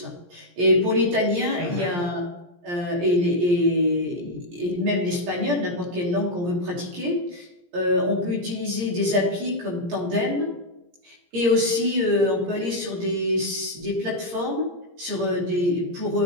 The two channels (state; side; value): late; left; 17 ms